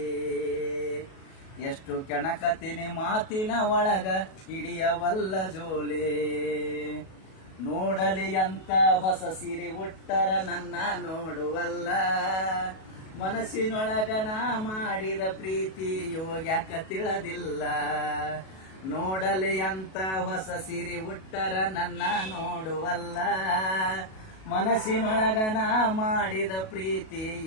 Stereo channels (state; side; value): late; right; 37 ms